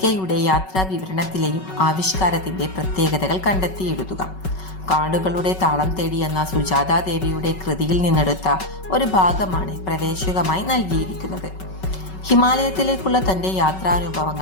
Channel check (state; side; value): late; right; 5.3 ms